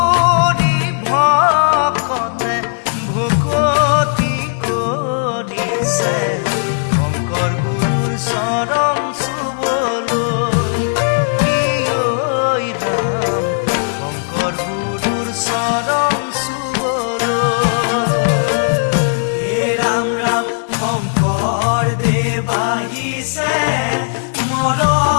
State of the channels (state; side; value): silent; right; digital silence